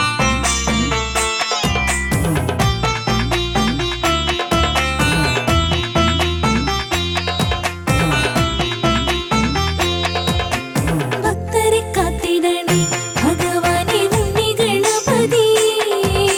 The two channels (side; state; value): both; identical; correlation 1.00